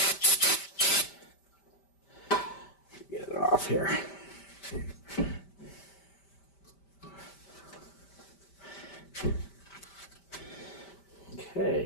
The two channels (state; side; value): late; right; 5.1 ms